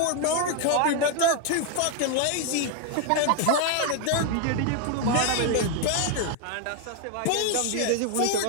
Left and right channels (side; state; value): both; different; correlation 0.01